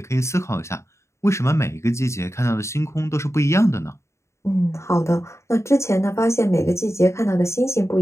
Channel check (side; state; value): right; late; 0.14 ms